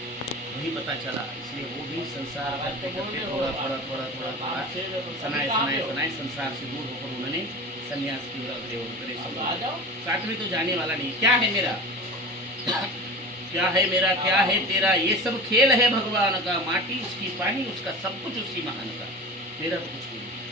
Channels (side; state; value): both; normal; correlation 0.32